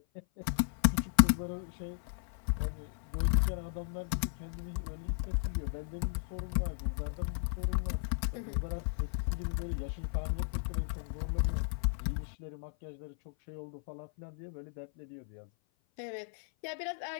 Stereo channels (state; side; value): silent; right; 54 dB below the other